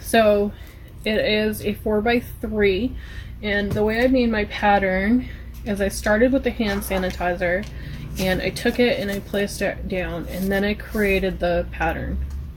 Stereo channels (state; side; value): identical; both; correlation 1.00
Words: it is a 4x3, and the way I made my pattern is I started with the hand sanitizer and I took it and I placed it down, and then I created the pattern